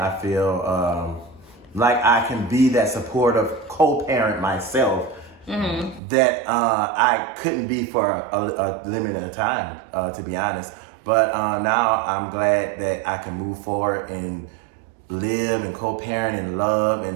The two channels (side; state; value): left; drops out; at 6.0 s